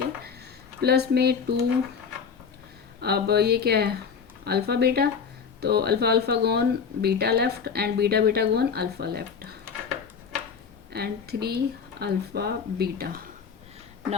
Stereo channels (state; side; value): quieter; right; 6.3 dB